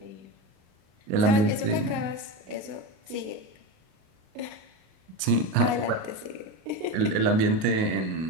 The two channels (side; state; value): left; late; 38 ms